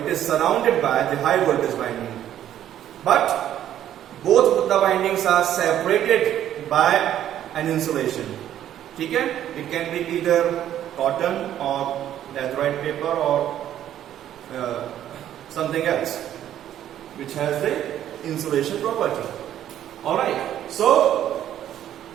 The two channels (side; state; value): left; quieter; 11.3 dB